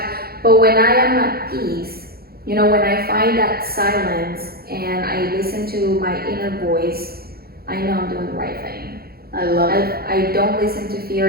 But when I am at peace, when I find that silence and I listen to my inner voice, I know I'm doing the right thing. I love it. I don't listen to fear.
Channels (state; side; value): late; left; 0.44 ms